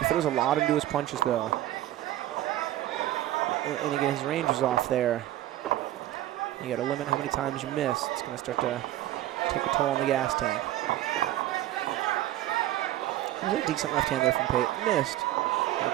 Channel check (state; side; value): quieter; left; 14.3 dB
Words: throws a lot into his punches, though. And again, his range is off there. You got to limit how many times you miss. It's going to start to take a toll on the gas tank. There's a decent left hand there from Pate. Missed.